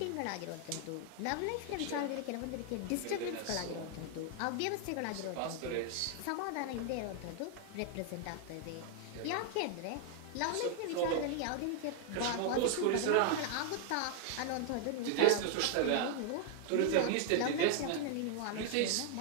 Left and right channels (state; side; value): different; both; correlation 0.00